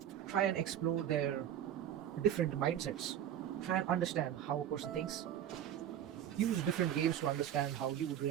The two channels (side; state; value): left; quieter; 10.5 dB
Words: Try and explore their different mindsets. Try and understand how a person thinks. Use different games to understand how you would